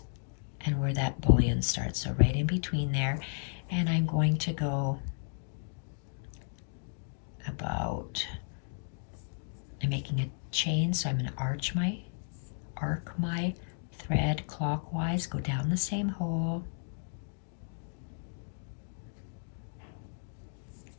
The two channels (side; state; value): right; silent; digital silence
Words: and where that bullion starts. So right in between there. And I'm going to go about, I'm making a chain, so I'm going to arc my thread clockwise, go down the same hole,